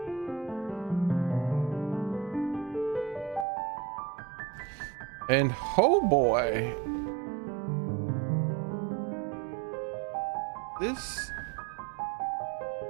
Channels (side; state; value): left; drops out; at 3.5 s